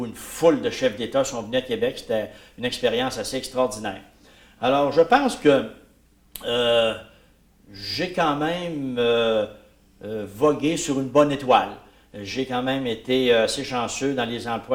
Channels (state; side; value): identical; both; correlation 1.00